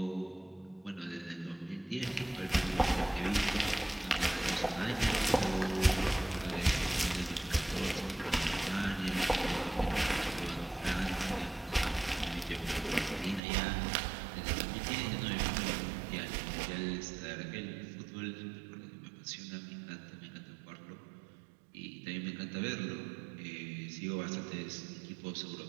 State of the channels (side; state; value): left; drops out; at 13.4 s